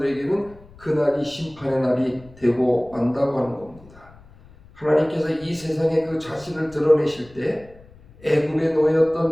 그날이 심판의 날이 되고 만다고 하는 겁니다. 하나님께서 이 세상에 그 자신을 드러내실 때 애굽의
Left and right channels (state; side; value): noise; left; rumble, 24 dB below the sound